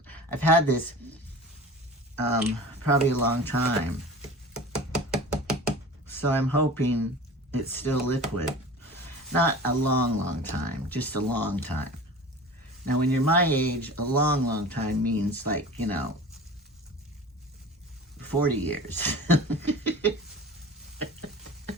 I've had this probably a long time. So I'm hoping it's still liquid. Not a long, long time, just a long time. Now, when you're my age, a long, long time means like, you know, 40 years.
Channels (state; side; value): normal; both; correlation 0.38